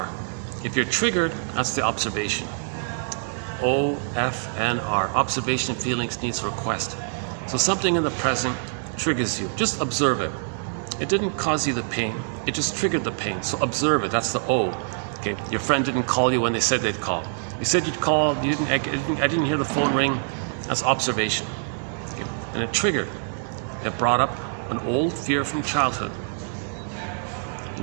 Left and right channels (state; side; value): silent; left; digital silence